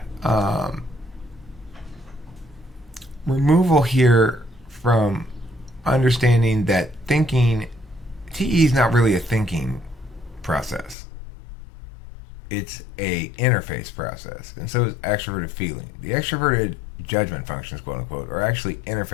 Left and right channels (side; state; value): right; drops out; at 11.0 s